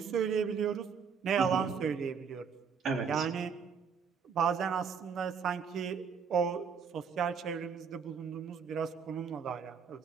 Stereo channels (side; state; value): left; quieter; 6.4 dB